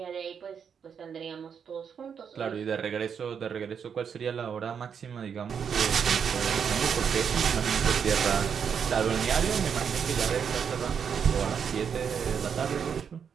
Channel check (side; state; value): left; quieter; 7.2 dB